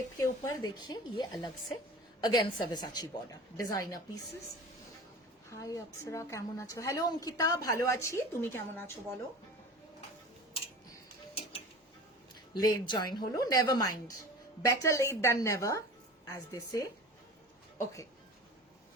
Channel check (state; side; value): normal; both; correlation 0.37